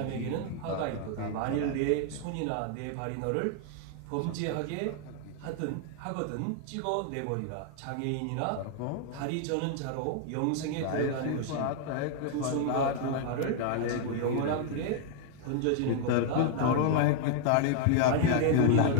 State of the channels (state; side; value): different; both; correlation 0.00